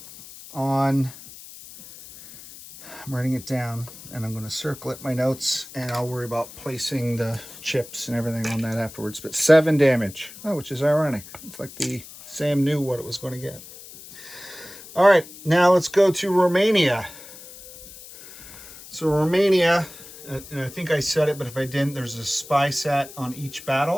on, I'm writing it down and I'm going to circle it in my notes and I'll worry about placing the chips and everything on that afterwards. But 7 damage, which is ironic. It's like the Sam knew what it was going to get. All right, now let's go to Romania. So Romania, and I think I said it, but if I didn't, there's a spy set on each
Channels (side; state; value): left; noise; hiss, 17 dB below the sound